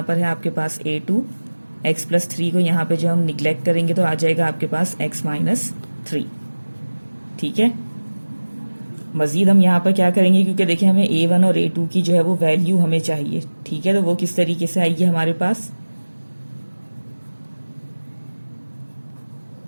पर है आपके पास a2, x + 3 को यहाँ पे जो हम निगलेक्ट करेंगे तो आ जाएगा आपके पास x - 3, ठीक है। मजीद हम यहाँ पर क्या करेंगे, क्योंकि देखिए हमें a1 और a2 की जो है वो वैल्यू हमें चाहिए, ठीक है। तो वो किस तरीके से आएगी हमारे पास,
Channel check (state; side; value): inverted; both; correlation -1.00